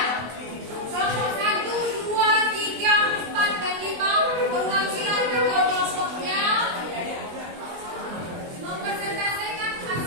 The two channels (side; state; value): left; late; 24 ms